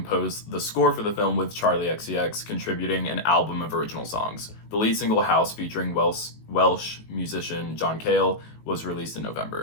the score for the film with Charlie XCX contributing an album of original songs. The lead single House featuring Welsh musician John Cale was released in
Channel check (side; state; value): right; late; 19 ms